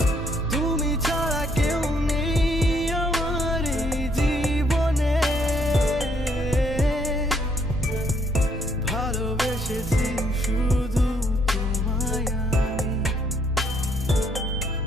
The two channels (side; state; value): both; normal; correlation 0.69